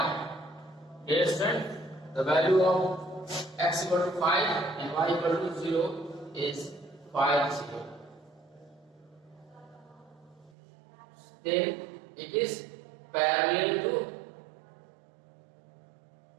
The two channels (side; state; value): left; drops out; at 10.5 s